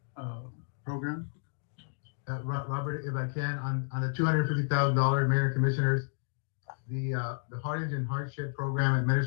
program. Robert, if I can, on the $250,000, Mayor and Commissioners, the Harlingen hardship program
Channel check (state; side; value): silent; right; digital silence